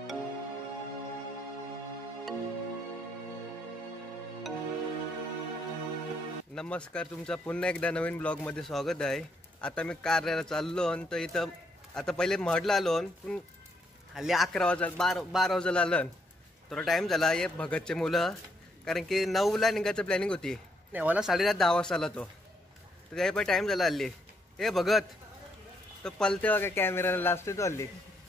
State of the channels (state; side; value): normal; both; correlation 0.74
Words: तुमचा पुन्हा एकदा नवीन ब्लॉगमध्ये स्वागत आहे। आता मी कार्याला चाललो तर इथं आता पहिले महडला आलो पण हल्ली 11 वाजता 12 वाजता आलं थोडा टाइम झाला। हे भगतचे मुलं कारण की 9ला निघायचं प्लॅनिंग होती, नेवाला 10:30 वाजता आला तो, तर त्याही पण टाइम झाला हल्ली। हे भगत तो पलते बघा कॅमेराला लाजते तो हल्ली,